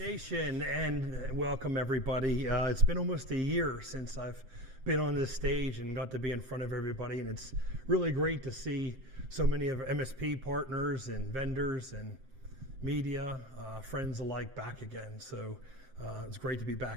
and welcome everybody. It's been almost a year since I've been on this stage and got to be in front of everybody, and it's really great to see so many of our MSP partners and vendors and media, friends alike back again. So it's great to be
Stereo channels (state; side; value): late; left; 7.6 ms